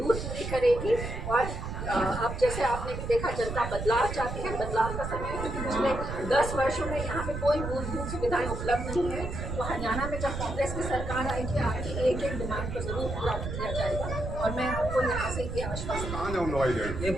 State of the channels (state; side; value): noise; right; rumble, 5 dB below the sound